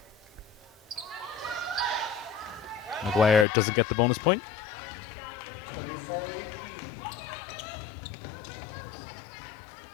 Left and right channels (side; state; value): right; drops out; at 3.5 s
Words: Maguire doesn't get the bonus point.